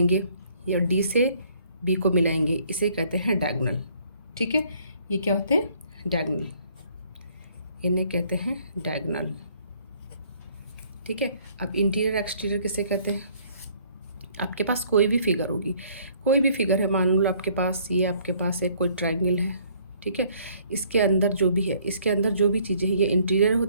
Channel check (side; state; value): both; inverted; correlation -0.62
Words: या D से B को मिलाएंगे, इसे कहते हैं डायगोनल, ठीक है। ये क्या होते हैं? डायगोनल, इन्हें कहते हैं डायगोनल, ठीक है। अब इंटीरियर एक्सटीरियर किसे कहते हैं? आपके पास कोई भी फिगर होगी, कोई भी फिगर है, मान लो आपके पास ये आपके पास एक कोई ट्रायंगल है, ठीक है। इसके अंदर जो भी है, इसके अंदर जो भी चीज़ें हैं ये इंटीरियर